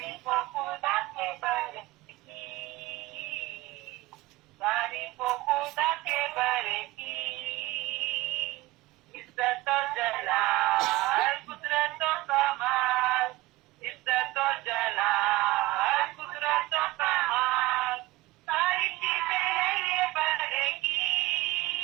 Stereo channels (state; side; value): quieter; left; 19.6 dB